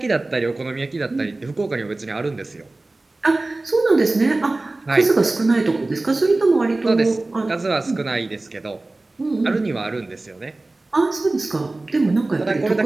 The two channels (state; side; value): quieter; left; 3.0 dB